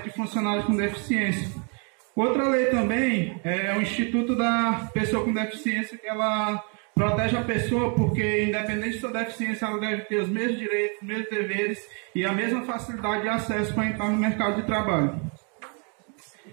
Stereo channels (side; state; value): left; quieter; 37.3 dB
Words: de funcionários com deficiência. Outra lei também é o Instituto da Pessoa com Deficiência, que ela protege a pessoa porque, independente de sua deficiência, ela deve ter os mesmos direitos, os mesmos deveres e a mesma facilidade de acesso para entrar no mercado de trabalho.